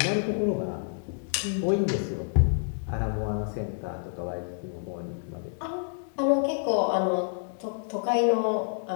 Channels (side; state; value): right; silent; digital silence